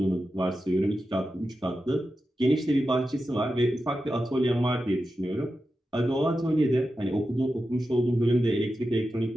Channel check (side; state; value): both; normal; correlation 0.91